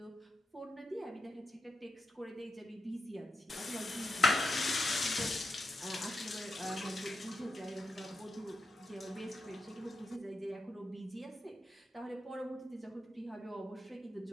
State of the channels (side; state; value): both; normal; correlation 0.87